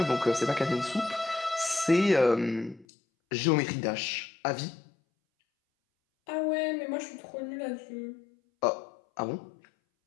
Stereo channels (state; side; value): drops out; right; at 2.9 s